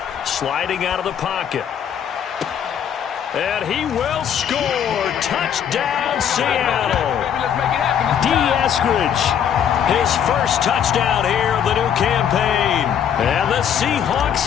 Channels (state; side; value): quieter; right; 8.7 dB